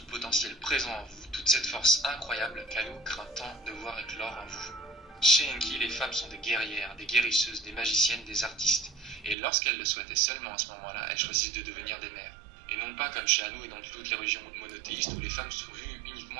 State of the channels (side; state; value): left; drops out; at 9.3 s